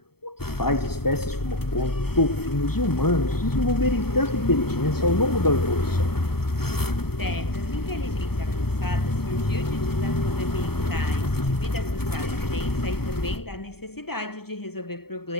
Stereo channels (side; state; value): right; late; 0.96 ms